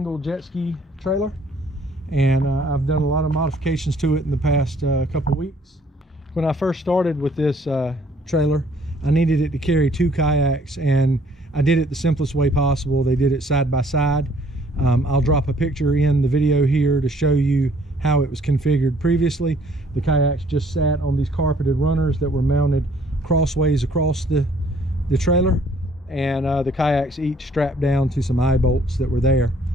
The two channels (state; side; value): normal; both; correlation 0.61